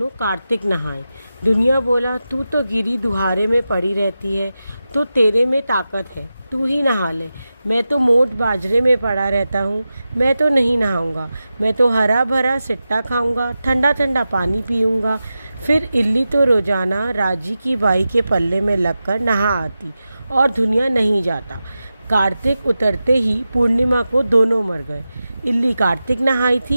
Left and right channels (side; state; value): both; inverted; correlation -0.92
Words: कार्तिक नहाए। दुनिया बोला, तू तो गिरी दुहारे में पड़ी रहती है, तो तेरे में ताकत है, तू ही नहा ले। मैं तो मोट बाजरे में पड़ा रहता हूँ, मैं तो नहीं नहाऊंगा। मैं तो हरा भरा सिट्टा खाऊंगा, ठंडा ठंडा पानी पीऊंगा। फिर इल्ली तो रोजाना राजी की बाई के पल्ले में लगकर नहा आती और दुनिया नहीं जाता। कार्तिक उतरते ही पूर्णिमा को दोनों मर गए। इल्ली कार्तिक नहाई